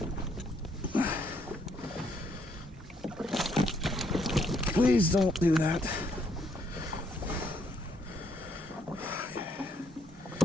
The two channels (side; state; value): both; normal; correlation 0.70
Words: Please don't do that.